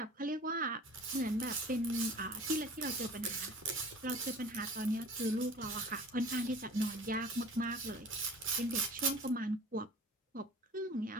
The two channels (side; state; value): both; normal; correlation 0.43